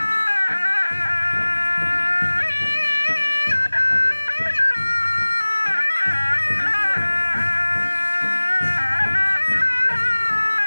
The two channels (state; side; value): inverted; both; correlation -1.00